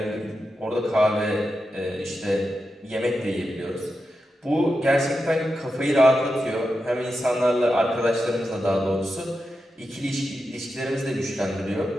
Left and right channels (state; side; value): normal; both; correlation 0.89